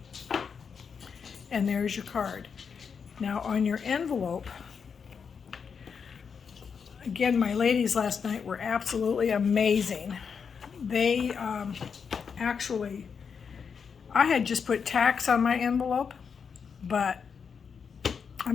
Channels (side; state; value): right; quieter; 6.3 dB